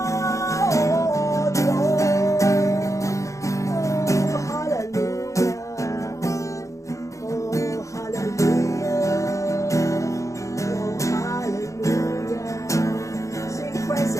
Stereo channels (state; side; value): late; right; 0.15 ms